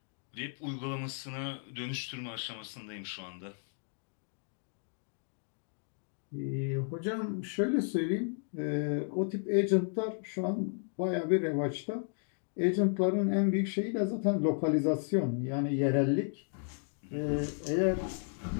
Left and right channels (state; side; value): silent; right; 55 dB below the other